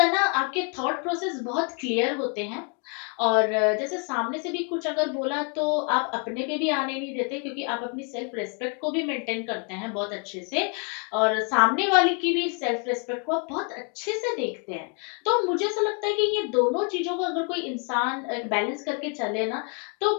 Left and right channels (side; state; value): right; quieter; 37.1 dB